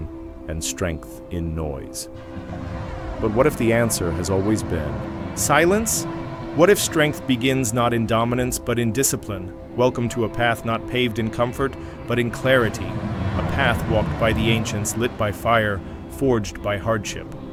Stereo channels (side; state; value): both; identical; correlation 1.00